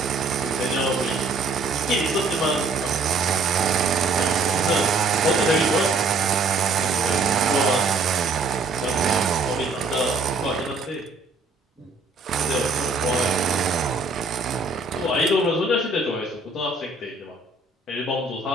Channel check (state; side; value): quieter; left; 3.6 dB